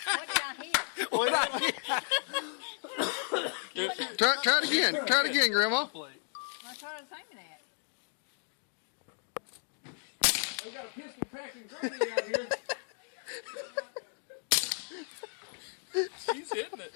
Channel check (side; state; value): right; silent; 55 dB below the other